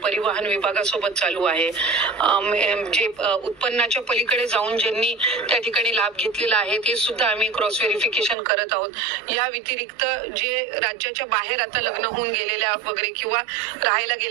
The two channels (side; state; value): left; drops out; at 8.3 s